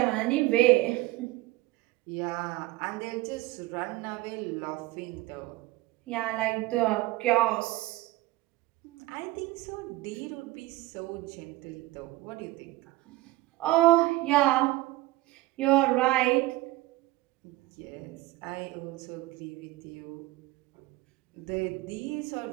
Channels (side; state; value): left; quieter; 19.0 dB